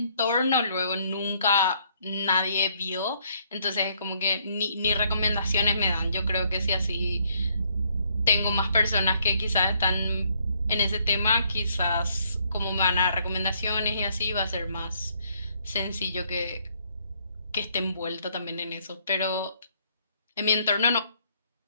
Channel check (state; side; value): inverted; both; correlation -0.68